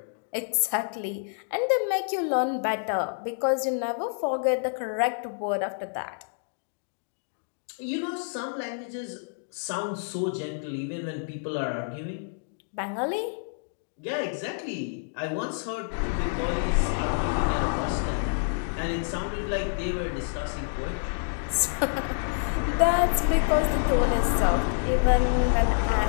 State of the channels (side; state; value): right; silent; digital silence